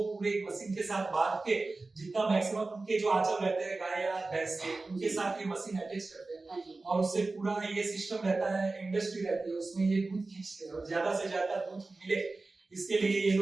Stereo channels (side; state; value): left; quieter; 3.4 dB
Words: पूरे एक मशीन के साथ बांध के जितना मैक्सिमम उनके जो आंचल रहते हैं गाय या भैंस के, उनके साथ ये मशीन अटैच करते हैं और उससे पूरा ये सिस्टम रहता है, इंडस्ट्री रहती है, उसमें ये दूध खींचते हैं और ज्यादा से ज्यादा दूध मिले इसके लिए ये